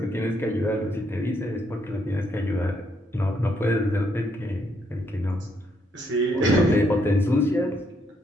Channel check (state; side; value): normal; both; correlation 0.74